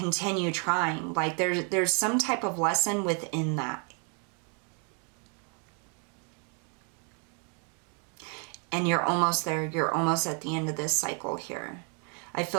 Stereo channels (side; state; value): left; quieter; 38.8 dB